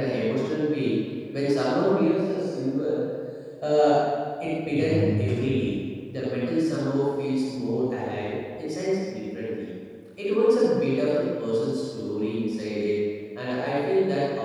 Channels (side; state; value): both; identical; correlation 1.00